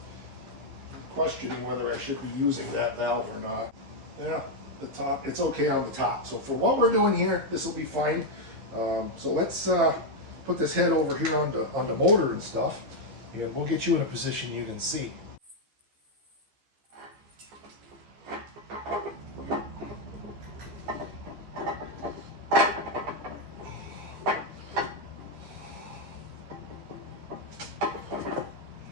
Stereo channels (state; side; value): late; left; 15 ms